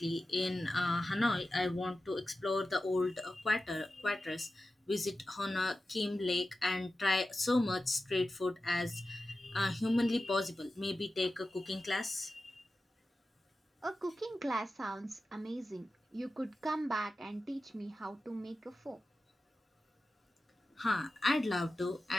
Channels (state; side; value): normal; both; correlation 0.93